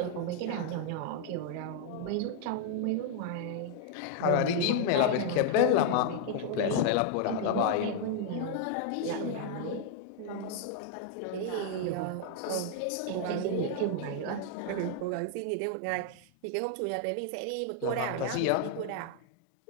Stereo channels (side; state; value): both; different; correlation 0.00